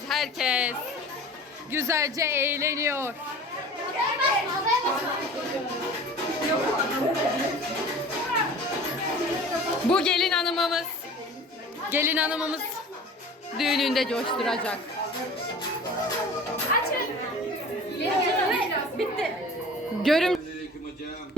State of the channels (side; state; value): both; normal; correlation 0.41